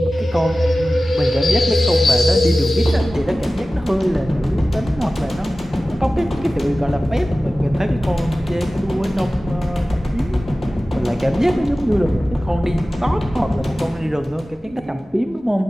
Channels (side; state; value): both; normal; correlation 0.96